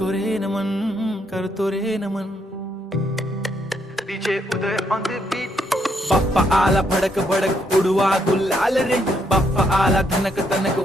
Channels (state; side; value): normal; both; correlation 0.75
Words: रे नमन करतो रे नमन। DJ Uday on the beat. Bappa आला भडक भडक उडवा गुलाल रे, बाप्पा आला धनक तनक